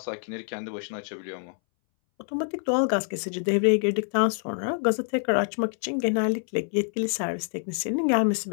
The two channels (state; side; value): silent; right; 61 dB below the other